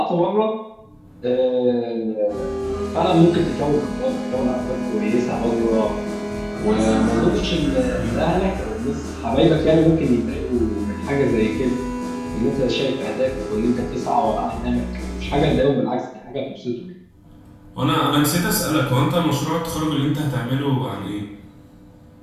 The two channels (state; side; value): identical; both; correlation 1.00